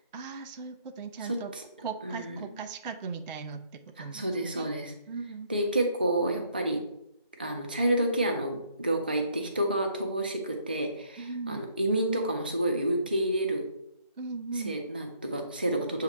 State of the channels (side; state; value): both; inverted; correlation -0.66